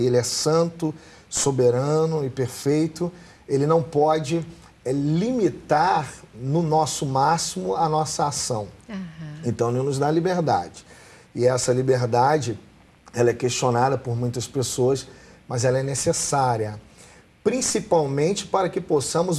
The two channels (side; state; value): both; identical; correlation 1.00